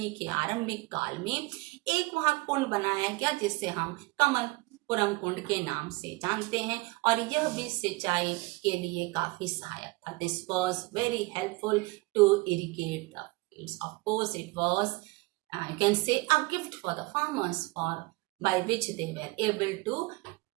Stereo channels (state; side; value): quieter; left; 24.3 dB